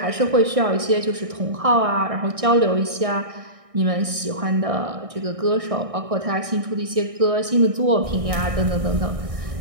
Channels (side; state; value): left; late; 1.6 ms